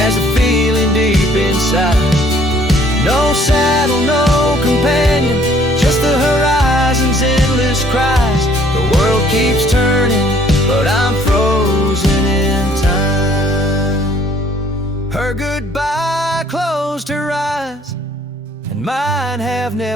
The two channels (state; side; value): normal; both; correlation 0.60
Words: a feeling deep inside. No saddle, no companion, just the horizon's endless cries. The world keeps turning, but I'm frozen in time. Her goodbye closed her eyes, and mine have